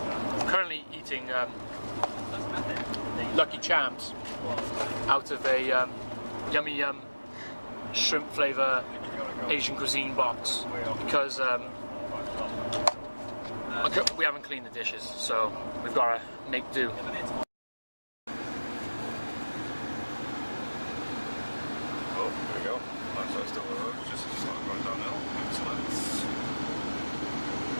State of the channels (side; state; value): both; inverted; correlation -1.00